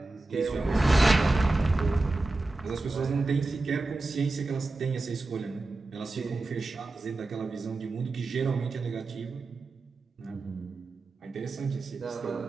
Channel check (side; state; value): left; quieter; 3.2 dB